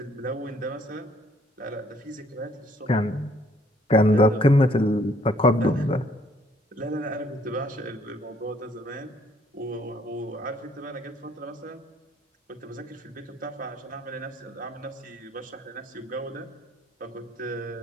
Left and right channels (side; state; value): both; normal; correlation 0.64